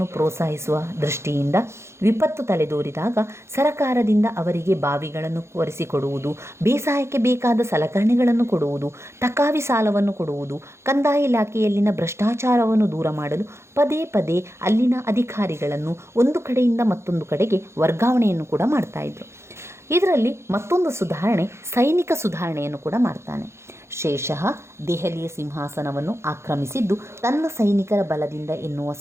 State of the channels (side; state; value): left; late; 0.13 ms